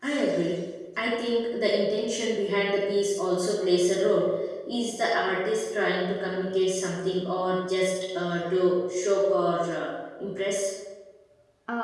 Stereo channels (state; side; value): identical; both; correlation 1.00